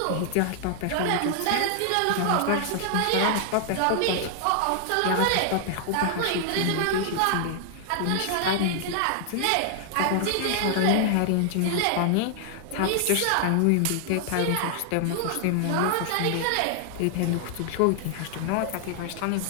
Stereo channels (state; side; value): different; both; correlation 0.00